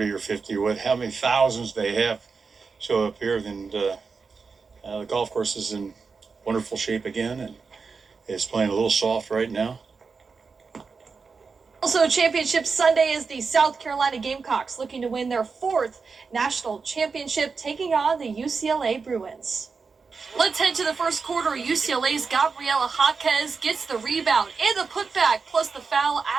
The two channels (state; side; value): quieter; left; 4.9 dB